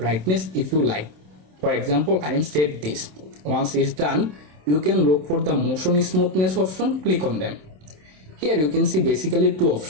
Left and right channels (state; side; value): late; left; 27 ms